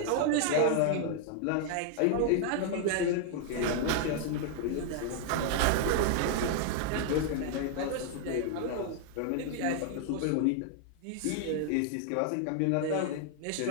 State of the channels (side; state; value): both; different; correlation 0.00